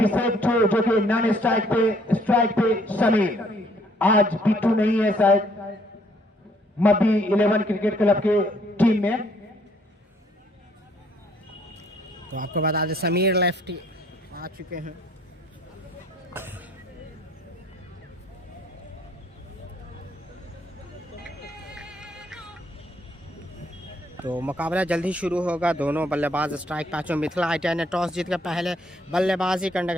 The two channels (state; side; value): normal; both; correlation 0.64